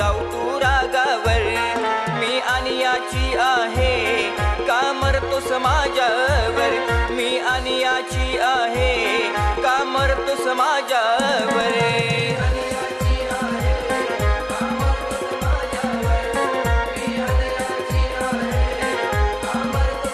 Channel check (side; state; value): both; identical; correlation 1.00